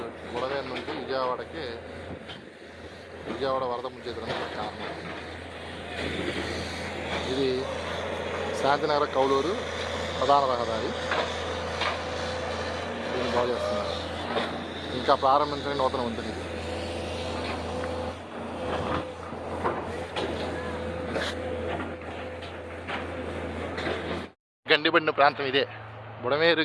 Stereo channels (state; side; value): identical; both; correlation 1.00